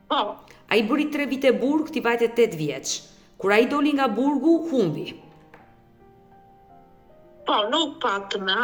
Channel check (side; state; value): both; identical; correlation 1.00